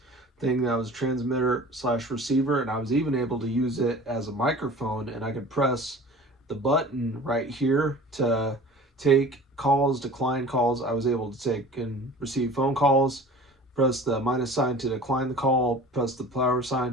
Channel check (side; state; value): both; normal; correlation 0.42